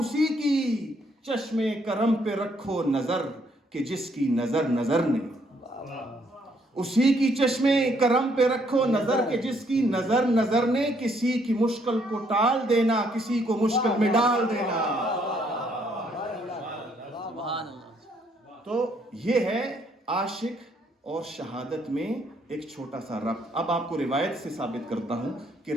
کی چشم کرم پہ رکھو نظر کہ جس کی نظر نظر نے. اسی کی چشم کرم پہ رکھو نظر کہ جس کی نظر نظر نے. کسی کی مشکل کو ٹال دینا, کسی کو مشکل میں ڈال دینا. سبحان اللہ. تو یہ ہے عاشق اور شہادت میں ایک چھوٹا سا ربط. اب آپ کو روایت سے ثابت کرتا ہوں کہ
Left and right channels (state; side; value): normal; both; correlation 0.69